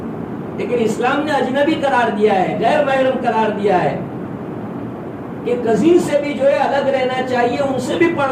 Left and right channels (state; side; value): identical; both; correlation 1.00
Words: لیکن اسلام نے اجنبی قرار دیا ہے، غیر محرم قرار دیا ہے کہ کزن سے بھی جو ہے الگ رہنا چاہیے، ان سے بھی